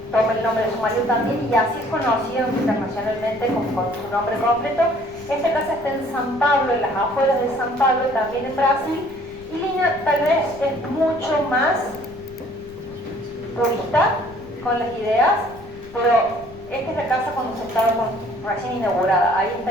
toma el nombre de su marido también y así es conocido internacionalmente con su nombre completo. Esta casa está en San Pablo, en las afueras de San Pablo, también en Brasil, y Lina tal vez es mucho más purista con las ideas, pero esta es la casa cuando se estaba recién inaugurada. Ahí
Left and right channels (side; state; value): left; noise; rumble, 20 dB below the sound